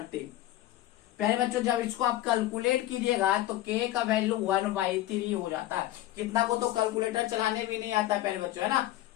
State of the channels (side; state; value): right; quieter; 14.8 dB